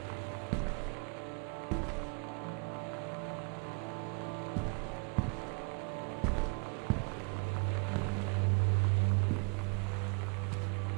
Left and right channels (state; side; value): quieter; left; 37.1 dB